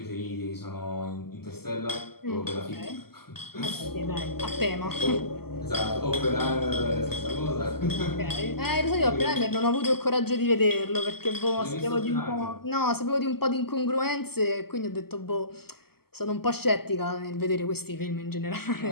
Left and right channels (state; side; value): late; right; 0.95 ms